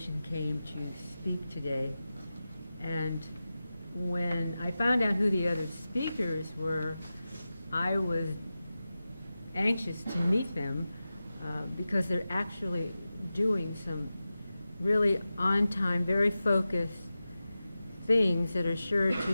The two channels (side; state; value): both; inverted; correlation -0.94